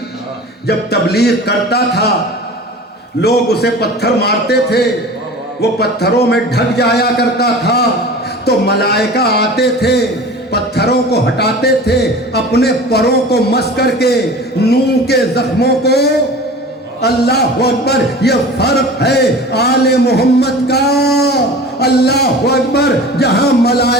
جب تبلیغ کرتا تھا، لوگ اسے پتھر مارتے تھے، وہ پتھروں میں ڈھک جایا کرتا تھا، تو ملائکہ آتے تھے، پتھروں کو ہٹاتے تھے، اپنے پروں کو مس کر کے نوح کے زخموں کو۔ اللہ اکبر، یہ فرق ہے آل محمد کا۔ اللہ اکبر، جہاں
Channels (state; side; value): normal; both; correlation 0.38